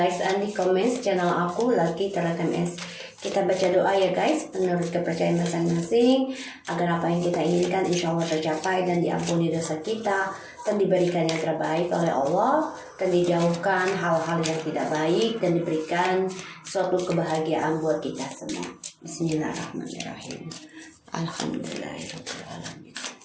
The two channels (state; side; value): identical; both; correlation 1.00